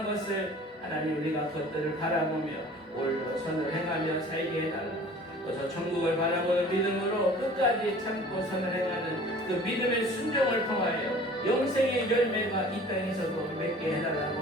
것을 하나님, 우리가 그것들을 바라보며 오늘도 선을 행하며 살게 해달라고, 저 천국을 바라보는 믿음으로 끝까지 참고 선을 행하는 그 믿음의 순종을 통하여 영생의 열매가 이 땅에서도 맺게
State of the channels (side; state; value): both; normal; correlation 0.46